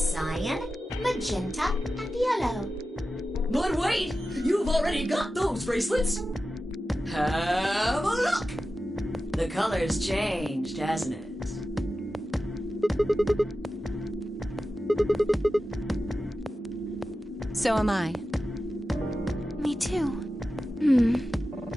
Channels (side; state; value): both; normal; correlation 0.93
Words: magenta, and yellow. But wait! You've already got those bracelets! Have a look! The color's changed, hasn't it? So am I. Me too.